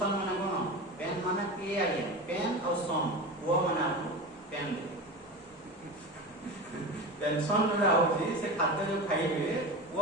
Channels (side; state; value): both; normal; correlation 0.26